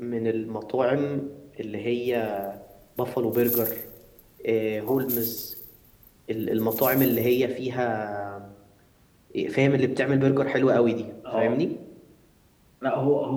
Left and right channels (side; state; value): both; identical; correlation 1.00